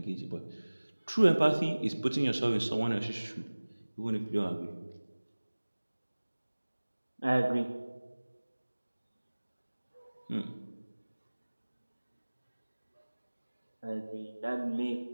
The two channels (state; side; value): inverted; both; correlation -1.00